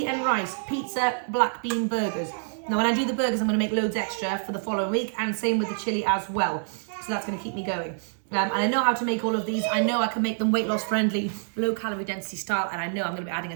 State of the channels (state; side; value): silent; left; digital silence